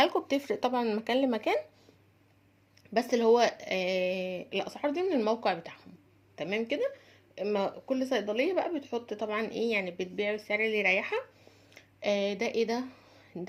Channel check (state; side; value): identical; both; correlation 1.00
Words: لكم بتفرق طبعا من مكان لمكان، بس اللي هو الاسعار دي من الموقع بتاعهم. تمام كده. اما كل صيدليه بقى بتحط طبعا ايه، يعني بتبيع السعر اللي يريحها. ده ايه